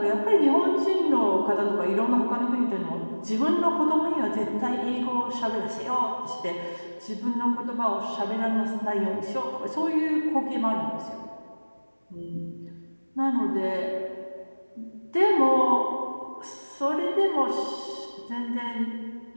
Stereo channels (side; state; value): both; inverted; correlation -1.00